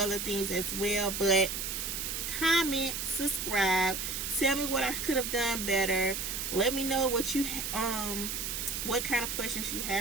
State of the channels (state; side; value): noise; right; hiss, 3 dB below the sound